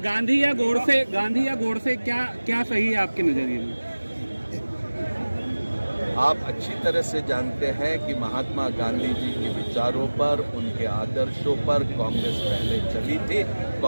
गांधी या गोडसे क्या सही है आपके नजरिए में? आप अच्छी तरह से जानते हैं कि महात्मा गांधी जी के विचारों पर, उनके आदर्शों पर कांग्रेस पहले चली थी,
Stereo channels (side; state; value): both; inverted; correlation -1.00